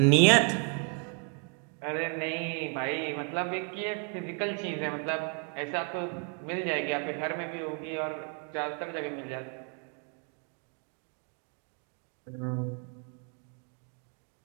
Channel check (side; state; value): left; quieter; 38.8 dB